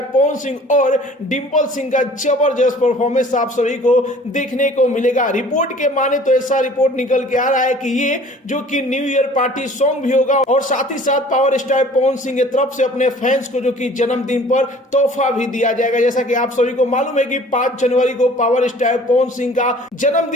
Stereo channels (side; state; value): both; normal; correlation 0.49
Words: पवन सिंह और डिंपल सिंह का जबरदस्त परफॉर्मेंस आप सभी को देखने को मिलेगा। रिपोर्ट के माने तो ऐसा रिपोर्ट निकल के आ रहा है कि ये जो कि न्यू ईयर पार्टी सॉन्ग भी होगा और साथ ही साथ पावर स्टार पवन सिंह की तरफ से अपने फैंस को जो कि जन्मदिन पर तोहफा भी दिया जाएगा। जैसा कि आप सभी को मालूम है कि 5 जनवरी को पावर स्टार पवन सिंह का